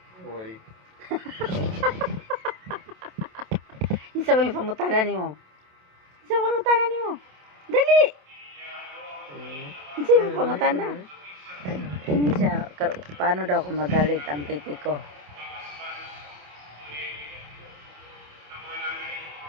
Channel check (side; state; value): left; late; 27 ms